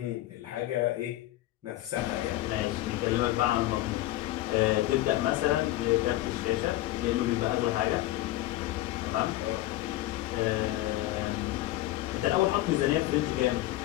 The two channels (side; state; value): right; quieter; 16.3 dB